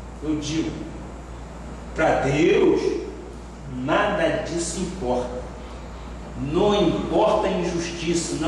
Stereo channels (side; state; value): both; identical; correlation 1.00